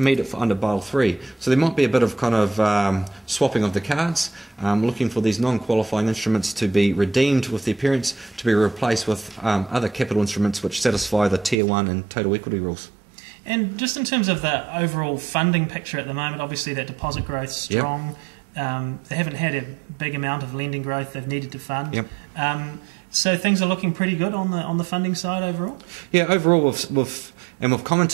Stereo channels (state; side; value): drops out; left; at 11.6 s